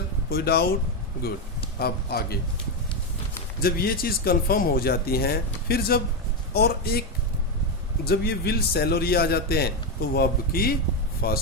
कोई डाउट? गुड। अब आगे जब ये चीज़ कंफर्म हो जाती हैं, फिर जब ये विल सेल और ये आ जाते हैं, तो वर्ब की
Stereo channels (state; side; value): normal; both; correlation 0.08